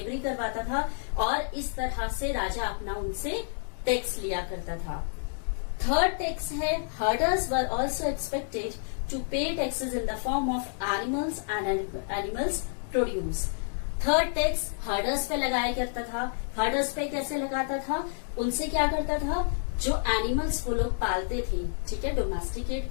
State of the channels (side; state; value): right; silent; digital silence